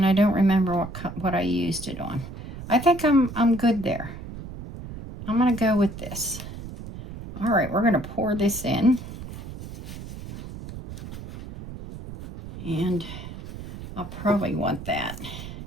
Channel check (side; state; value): right; noise; rumble, 11 dB below the sound